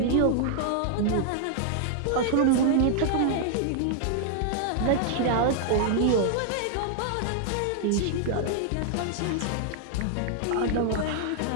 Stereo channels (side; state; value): both; different; correlation 0.00